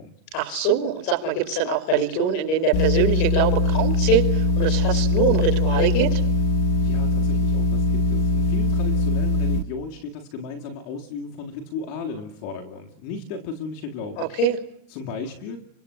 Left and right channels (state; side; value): late; right; 38 ms